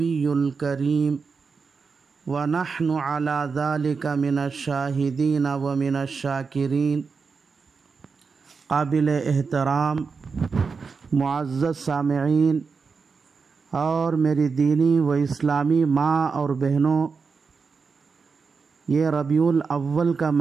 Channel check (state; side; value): quieter; left; 5.1 dB